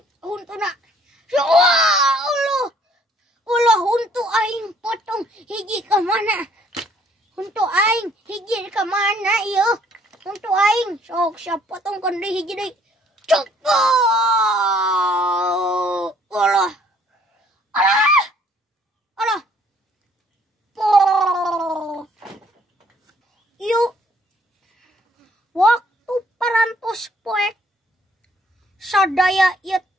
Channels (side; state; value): both; normal; correlation 0.62